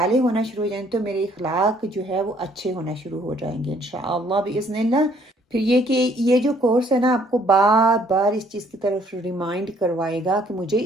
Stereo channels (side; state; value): both; normal; correlation 0.63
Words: ہونا شروع ہو جائیں گے تو میرے اخلاق جو ہے وہ اچھے ہونا شروع ہو جائیں گے انشاءاللہ باذن اللہ۔ پھر یہ کہ یہ جو کورس ہے نا، آپ کو بار بار اس چیز کی طرف ریمائنڈ کروائے گا کہ مجھے